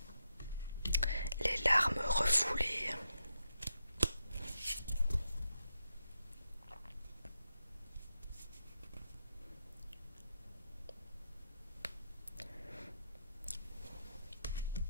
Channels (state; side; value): inverted; both; correlation -0.84